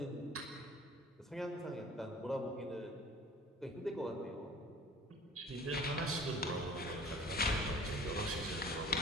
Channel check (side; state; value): both; normal; correlation 0.47